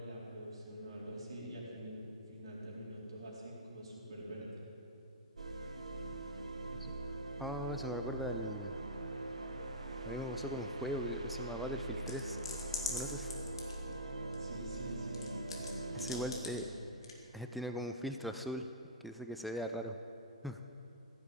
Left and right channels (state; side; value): normal; both; correlation -0.17